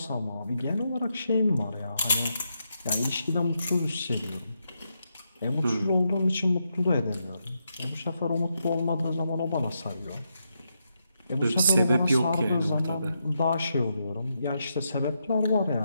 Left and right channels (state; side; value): inverted; both; correlation -0.83